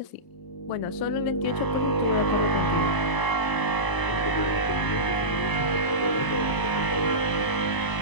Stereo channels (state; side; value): late; right; 1.0 ms